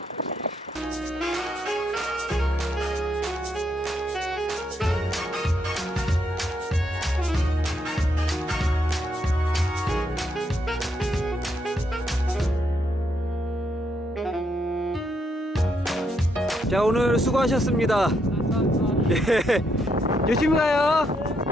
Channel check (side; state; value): both; normal; correlation 0.77